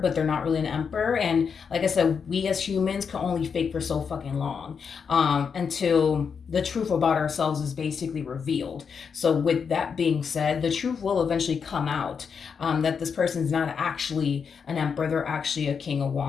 but they're not really an emperor. And like I said, we as humans can only fake for so fucking long until the truth about ourselves is basically revealed. So with that being said, the truth will eventually come out, that this person's not actually an emperor, they're actually a King of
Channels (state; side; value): quieter; right; 6.3 dB